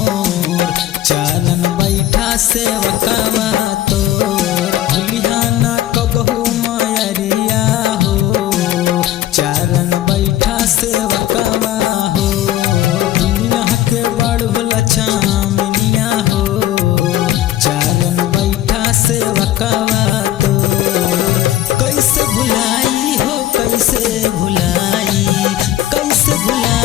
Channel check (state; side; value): quieter; right; 13.2 dB